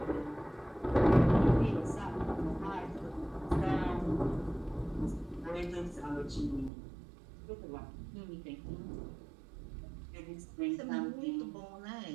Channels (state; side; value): drops out; left; at 6.7 s